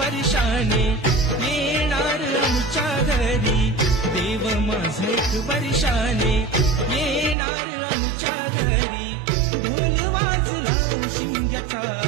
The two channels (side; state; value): left; drops out; at 7.4 s